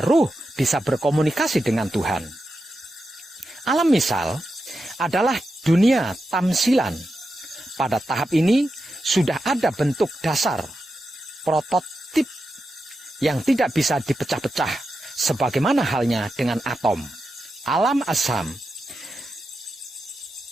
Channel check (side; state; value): both; normal; correlation 0.89